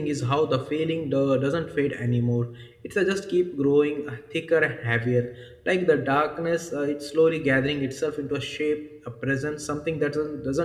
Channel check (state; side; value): identical; both; correlation 1.00